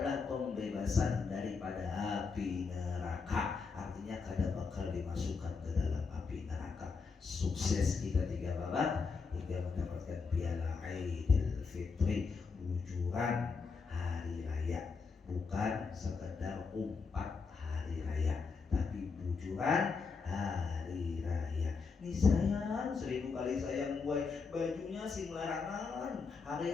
pembebasan daripada api neraka. Artinya kada bakal dimasukkan ke dalam api neraka. Sukses kita 3 babak hingga mendapatkan piala Aidil Fitri, bujuran hari raya. Bukan sekedar umpat hari raya, tapi bujuran hari raya. Nih sayang, 1000 kali sayang gue, bajunya sing larangan, hari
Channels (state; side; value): quieter; right; 4.9 dB